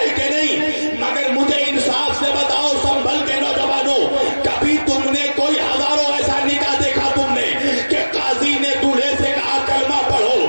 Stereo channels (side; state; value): both; inverted; correlation -1.00